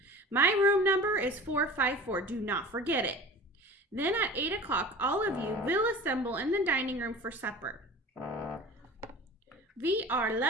My room number is 454. Do not forget it. Then at 8 o'clock, all of you will assemble in the dining room for supper. We are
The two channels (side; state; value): both; normal; correlation 0.38